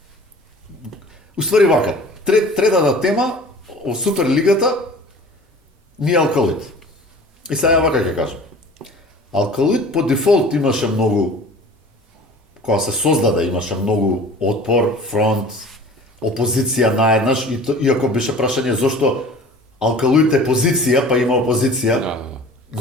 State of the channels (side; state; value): both; normal; correlation 0.44